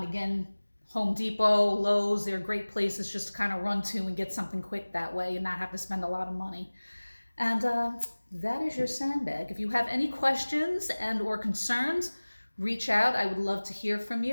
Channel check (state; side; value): inverted; both; correlation -1.00